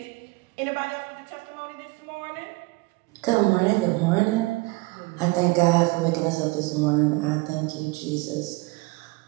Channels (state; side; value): quieter; left; 24.8 dB